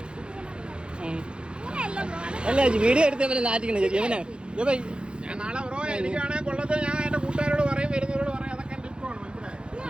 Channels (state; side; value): late; left; 0.054 ms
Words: അല്ല വീഡിയോ എടുത്തവനെ നാറ്റിക്കണേ ചേച്ചി ഇവനെ ഞാൻ നാളെ ബ്രോ എനിക്കാണെങ്കിൽ കൊള്ളത്തെ ഞാൻ എന്റെ കൂട്ടുകാരോട് പറയും വരുന്നവരോട് പറയും അതൊക്കെ എന്റെ ഇഷ്ടമാണ് മനസ്സിലായോ?